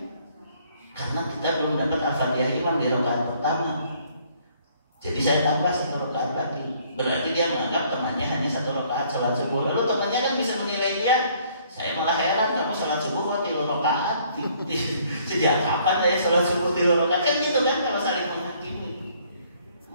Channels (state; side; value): inverted; both; correlation -0.62